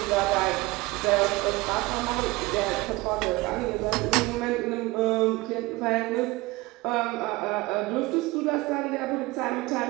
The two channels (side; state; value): left; quieter; 21.4 dB